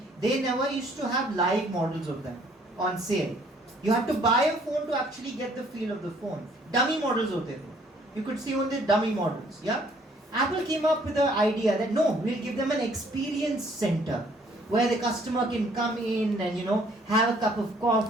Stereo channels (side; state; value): both; normal; correlation 0.62